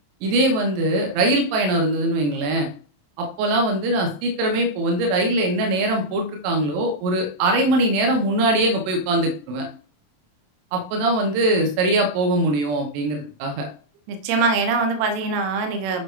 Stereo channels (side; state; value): left; late; 27 ms